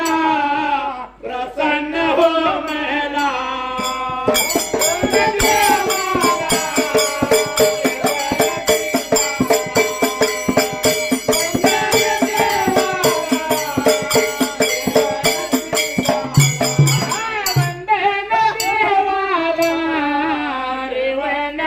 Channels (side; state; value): both; identical; correlation 1.00